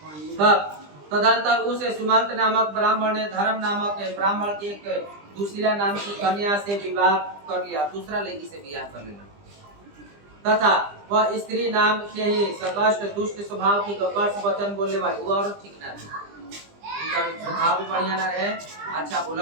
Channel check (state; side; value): late; left; 20 ms